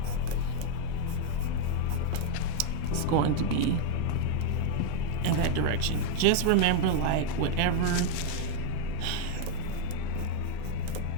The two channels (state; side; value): different; both; correlation 0.00